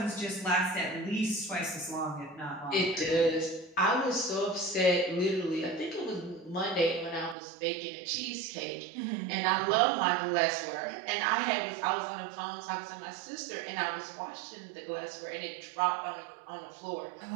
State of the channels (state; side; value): drops out; left; at 7.4 s